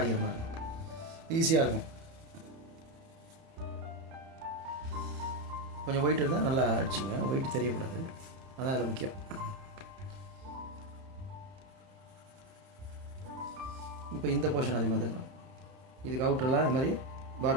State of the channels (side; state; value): left; late; 31 ms